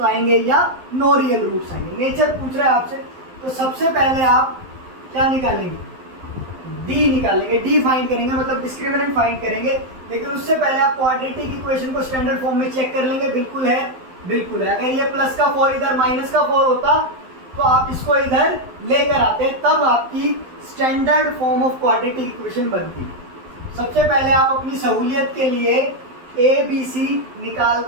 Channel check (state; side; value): late; left; 12 ms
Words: आएंगे या नो रियल रूट्स आएंगे। नेचर पूछ रहा है आपसे, तो सबसे पहले आप क्या निकालेंगे डी निकालेंगे, डी फाइंड करेंगे, मतलब डिस्क्रिमिनेंट फाइंड करेंगे। लेकिन उससे पहले आप क्वाड्रेटिक इक्वेशन को स्टैंडर्ड फॉर्म में चेक कर लेंगे, बिल्कुल है बिल्कुल है। अगर ये प्लस का 4 इधर माइनस का 4 होता तो आप इसको इधर लेकर आते, तब आपकी standard form of quadratic equation बनती। सबसे पहले आप अपनी सहूलियत के लिए ए बी सी निकाल